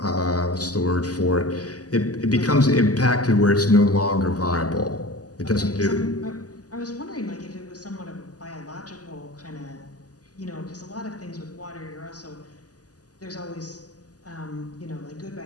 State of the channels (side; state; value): right; late; 0.67 ms